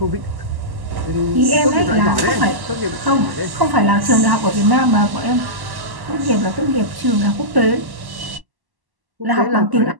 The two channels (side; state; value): left; late; 1.1 ms